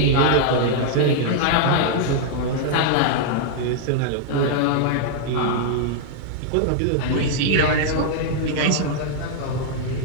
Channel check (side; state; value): both; different; correlation -0.01